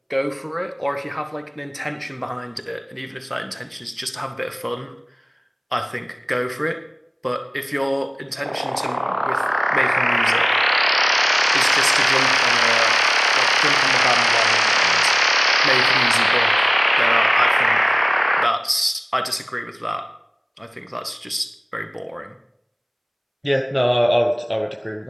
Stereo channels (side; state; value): both; identical; correlation 1.00